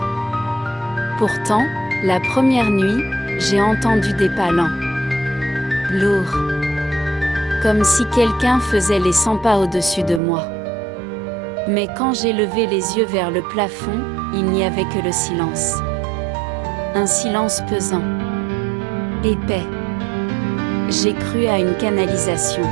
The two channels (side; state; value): left; drops out; at 10.2 s